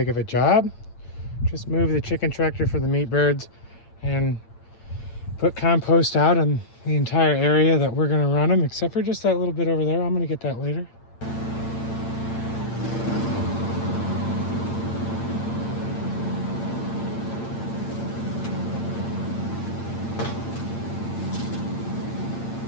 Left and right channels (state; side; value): late; right; 8.8 ms